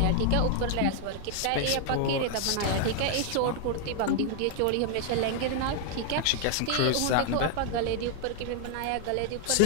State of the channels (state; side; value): different; both; correlation 0.00